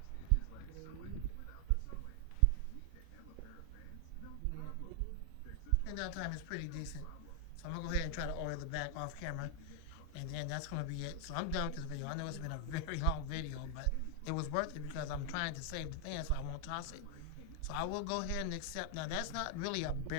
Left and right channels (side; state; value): both; different; correlation 0.00